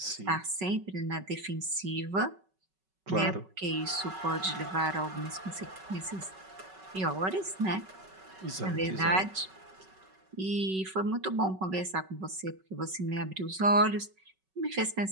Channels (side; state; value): left; late; 5.3 ms